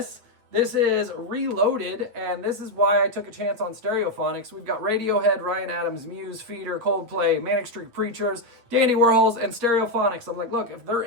This is Reloaded, and this is why I took a chance on Stereophonics. We've got Radiohead, Ryan Adams, Muse, Feeder, Coldplay, Manic Street Preachers, Dandy Warhols, and Stereophonics. I'm like, look, if they're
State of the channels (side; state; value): left; late; 8.6 ms